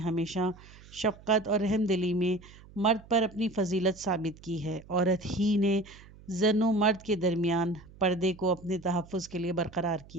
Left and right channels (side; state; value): right; noise; hum, 21 dB below the sound